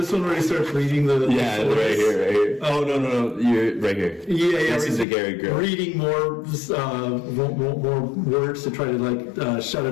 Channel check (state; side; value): drops out; right; at 5.1 s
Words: one where he starts reading the right here. Oh no, you're right here. Yeah. This is the Gary Grill. Reading more words to try to like shut